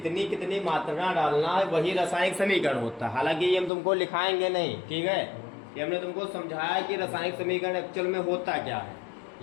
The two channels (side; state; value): right; drops out; at 3.7 s